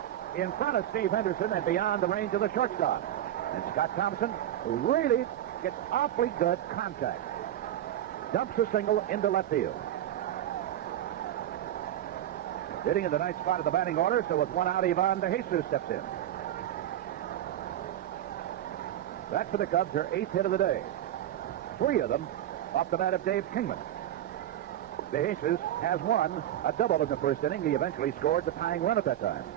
in front of Steve Henderson and beyond the range of the shortstop. And Scott Thompson really gets awfully good contact. Dumps a single into left field. Hitting in the ninth spot of the batting order, so with one out, Ivan DeJesus steps in. That for the Cubs, their 8th hit of the day. 3 of them off the bat of Dave Kingman. DeJesus has won a double in the first inning. He eventually scored the tying run at that time.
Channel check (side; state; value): left; quieter; 12.1 dB